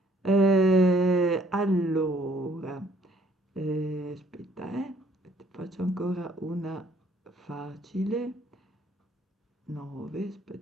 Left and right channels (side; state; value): both; normal; correlation 0.62